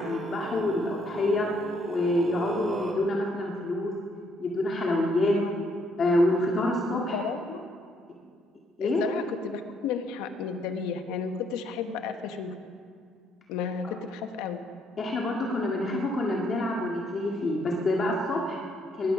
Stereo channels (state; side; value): normal; both; correlation 0.70